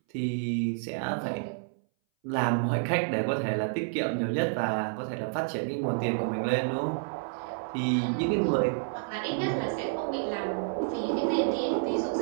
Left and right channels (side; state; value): left; silent; 58 dB below the other